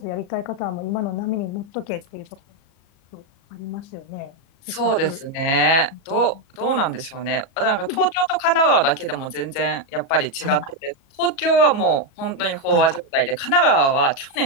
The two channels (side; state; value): right; late; 37 ms